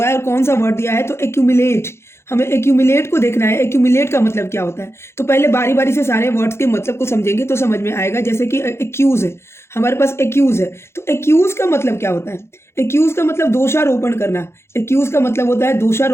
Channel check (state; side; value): late; right; 0.12 ms